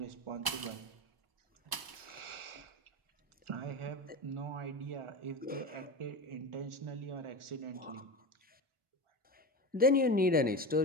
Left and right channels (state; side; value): late; left; 1.0 ms